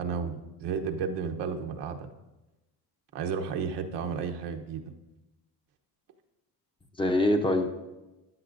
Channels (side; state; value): both; normal; correlation 0.44